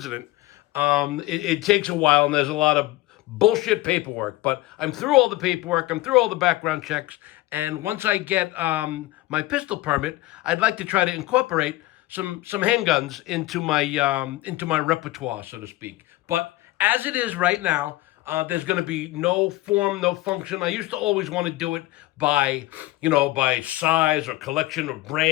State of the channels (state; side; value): quieter; right; 18.2 dB